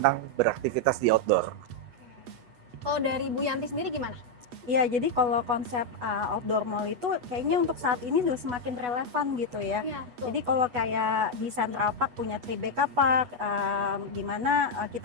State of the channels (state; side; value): late; left; 8.2 ms